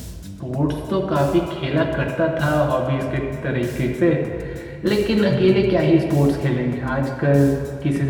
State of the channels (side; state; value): both; identical; correlation 1.00